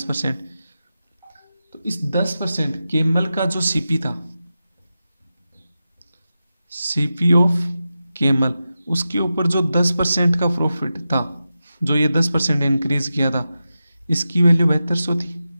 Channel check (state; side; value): inverted; both; correlation -0.92